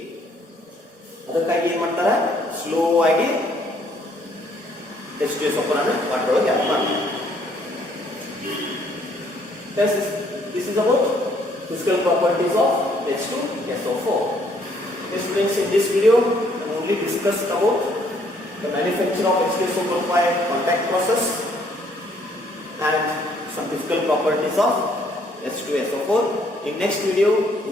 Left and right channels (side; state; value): both; normal; correlation 0.65